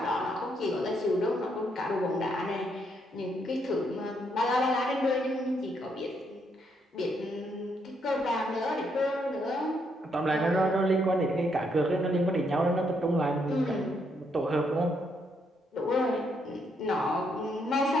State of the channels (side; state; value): both; normal; correlation 0.75